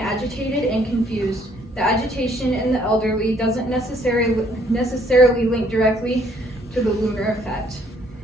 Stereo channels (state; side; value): normal; both; correlation 0.64